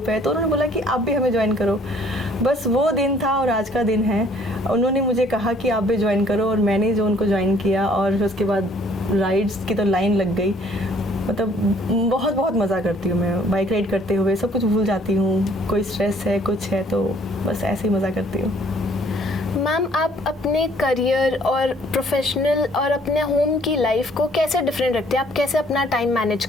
है, तो उन्होंने बोला कि आप भी हमें ज्वाइन करो। बस वो दिन था और आज का दिन है। उन्होंने मुझे कहा कि आप भी ज्वाइन करो और मैंने जो उनको ज्वाइन किया और फिर उसके बाद राइड्स की तो लाइन लग गई। मतलब बहुत बहुत मज़ा करती हूँ मैं बाइक राइड करते हुए, सब कुछ भूल जाती हूँ, कोई स्ट्रेस है कुछ है तो बस ऐसे ही मज़ा करती हूँ। मैम, आप अपने करियर और प्रोफेशनल और अपने होम की लाइफ को कैसे डिफरेंट रखते हैं? आप कैसे अपना टाइम मैनेज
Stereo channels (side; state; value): both; normal; correlation 0.60